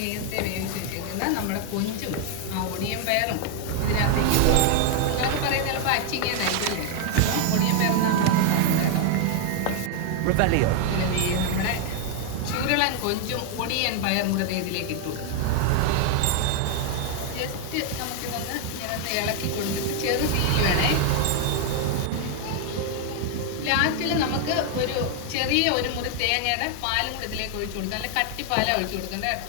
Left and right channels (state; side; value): different; both; correlation 0.00